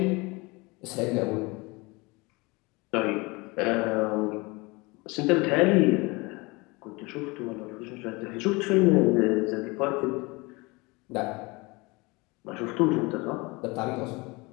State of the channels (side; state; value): right; quieter; 25.2 dB